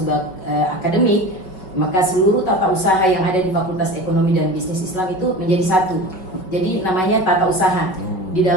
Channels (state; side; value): late; right; 5.3 ms